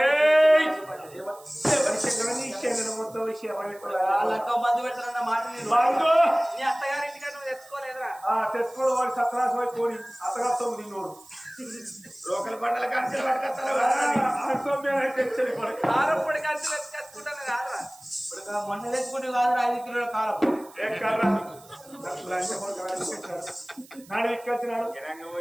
లెక్క మందు పెడతానన్న మాట నీ అత్తగారింటికి నువ్వు తెచ్చుకోలేదురా తెచ్చుకోవడం వాడి సత్తరాసం అయిపోయి అత్తగారితో నిన్నోడు లోకల్ పంటల కంచెలు పట్టుకొస్తారు కారం పొడి కలిసి తెచ్చుకుంటాను కాదురా ఇప్పుడు మొన్న తెచ్చుకుంటే కాదురా 5 కిలోల కారం నాడు ఎక్కొచ్చినాడు జనంగా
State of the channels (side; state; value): right; noise; hiss, 23 dB below the sound